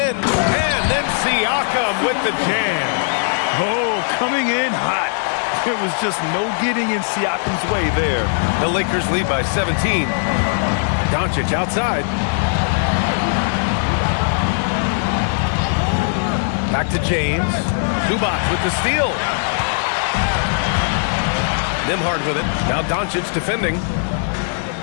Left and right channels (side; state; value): right; silent; 63 dB below the other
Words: and then Siakam with the jam. Oh, coming in hot. There was just no getting in Siakam's way there. The Lakers lead by 17. Doncic outside. Back to James. Zubac with the steal. Nimhard with it. Now Doncic defending.